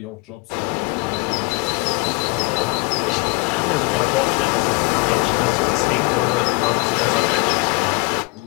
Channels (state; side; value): quieter; right; 27.2 dB